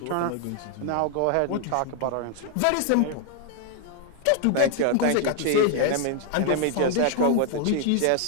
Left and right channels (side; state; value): both; different; correlation 0.00